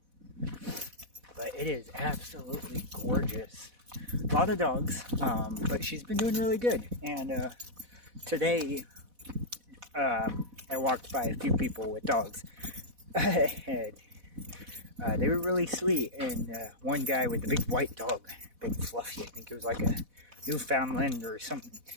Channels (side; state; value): left; late; 4.1 ms